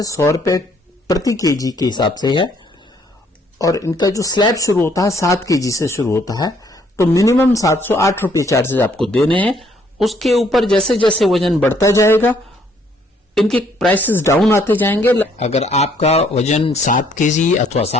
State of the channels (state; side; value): normal; both; correlation 0.66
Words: 100 रुपए प्रति KG के हिसाब से है और इनका जो स्लैब शुरू होता है 7 केजी से शुरू होता है। तो मिनिमम 708 रुपये चार्जेस आपको देने हैं। उसके ऊपर जैसे जैसे वजन बढ़ता जाएगा इनके प्राइसेस डाउन आते जाएंगे। अगर आपका वजन 7 केजी अथवा